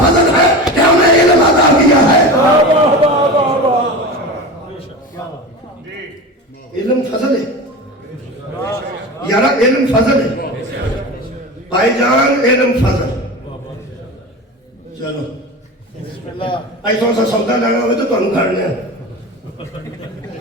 فضل ہے کہ ہمیں علم عطا کیا ہے. علم فضل ہے یارا, علم فضل ہے بھائی جان, علم فضل. چلو ایسا سا سودا لینا ہوئے تو تمہیں گھر لیا.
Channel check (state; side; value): normal; both; correlation 0.29